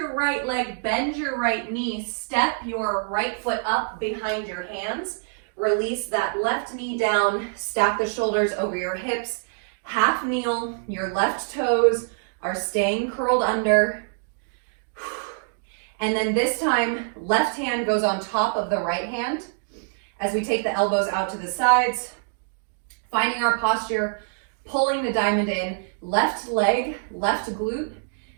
right leg, bend your right knee, step your right foot up behind your hands, release that left knee down, stack the shoulders over your hips, half kneel, your left toes are staying curled under, and then this time, left hand goes on top of the right hand as we take the elbows out to the sides, finding our posture, pulling the diamond in, left leg, left glute,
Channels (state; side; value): silent; left; digital silence